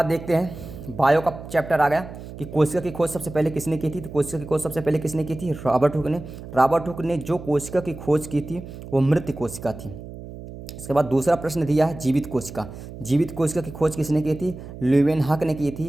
देखते हैं, बायो का चैप्टर आ गया कि कोशिका की खोज सबसे पहले किसने की थी, तो कोशिका की खोज सबसे पहले किसने की थी, रॉबर्ट हुक ने। रॉबर्ट हुक ने जो कोशिका की खोज की थी वो मृत कोशिका थी। इसके बाद दूसरा प्रश्न दिया है जीवित कोशिका। जीवित कोशिका की खोज किसने की थी, ल्यूवेनहॉक ने की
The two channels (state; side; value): noise; right; hum, 13 dB below the sound